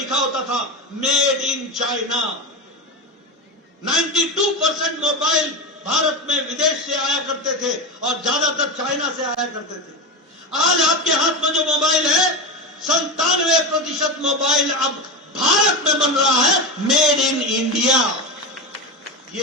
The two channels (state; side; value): normal; both; correlation 0.19